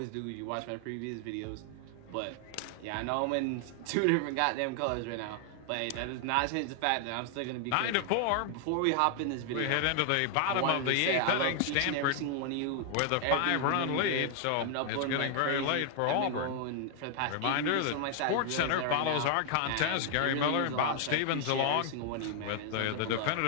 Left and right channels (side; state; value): both; different; correlation 0.00